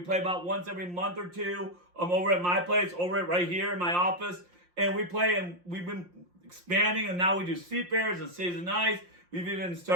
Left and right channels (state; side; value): late; left; 5.7 ms